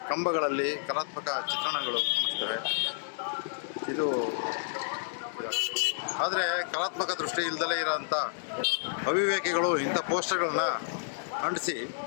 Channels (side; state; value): right; silent; digital silence